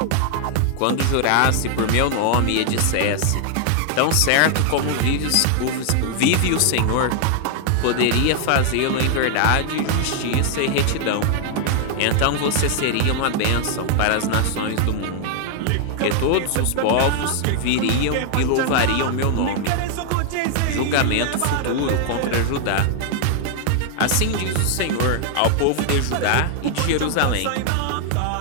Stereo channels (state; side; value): different; both; correlation 0.00